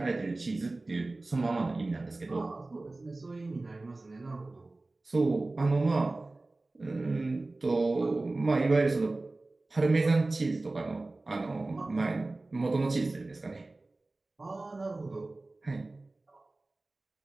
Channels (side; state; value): left; quieter; 3.1 dB